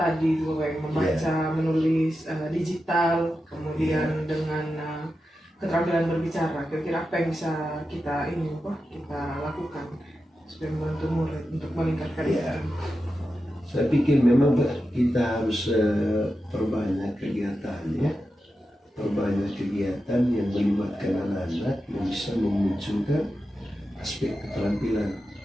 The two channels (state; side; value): normal; both; correlation 0.90